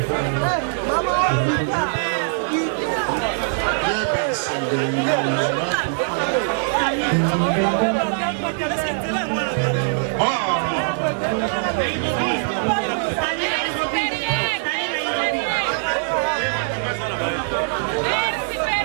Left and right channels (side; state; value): left; silent; 64 dB below the other